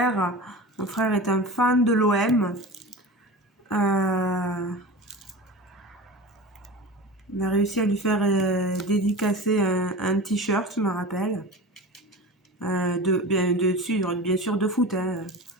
Mon frère est un fan de l'OM. On a réussi à lui faire dédicacer un t-shirt, je me rappelle. Bien sûr de foot. Hein,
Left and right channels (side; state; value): both; normal; correlation 0.31